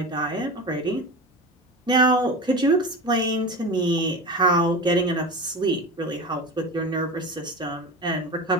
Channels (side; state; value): both; normal; correlation 0.28